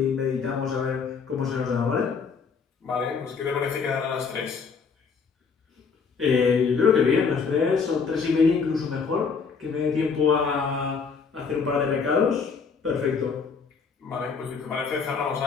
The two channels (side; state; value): right; quieter; 5.5 dB